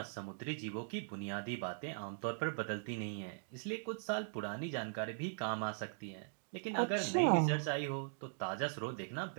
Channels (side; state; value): left; silent; digital silence